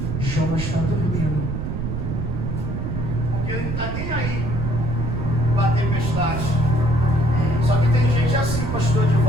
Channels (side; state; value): right; noise; rumble, 3 dB below the sound